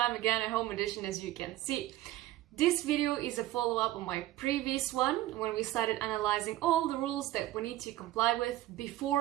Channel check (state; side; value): quieter; left; 15.6 dB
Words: again a home edition as you can see. This video is a follow-up on my previous one when we started analyzing all the rules that we need to comply with